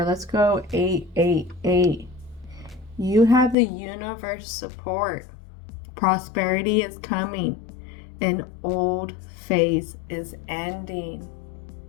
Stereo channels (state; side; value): drops out; right; at 3.6 s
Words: Let's go 888. You have the universe support. Prosperity is coming. An old phase is ending.